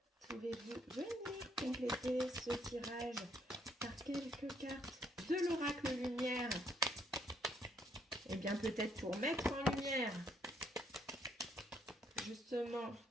Pouvez-vous venir compléter ce tirage par quelques cartes de l'oracle lumière? Eh bien, peut-être pour mettre en lumière, justement,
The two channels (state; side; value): normal; both; correlation 0.70